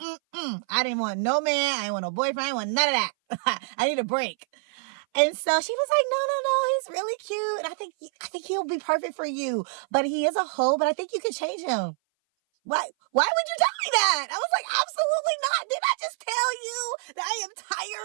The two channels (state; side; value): silent; left; 58 dB below the other